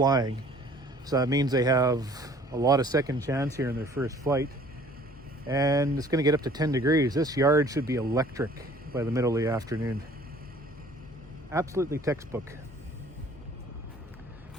So that means they have a lot of second chance here in their first flight. And it's going to get up to 10 degrees. This yard should be electric by the middle of the afternoon. Absolutely textbook.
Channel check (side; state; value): both; normal; correlation 0.53